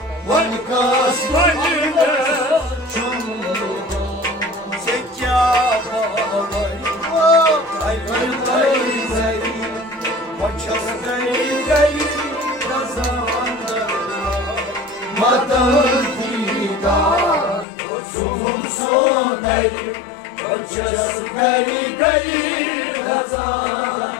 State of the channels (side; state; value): right; drops out; at 17.7 s